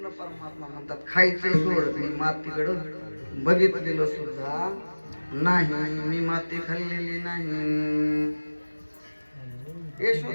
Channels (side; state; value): both; inverted; correlation -1.00